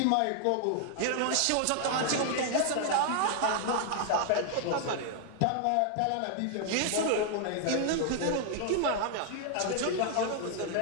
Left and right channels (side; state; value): both; different; correlation 0.00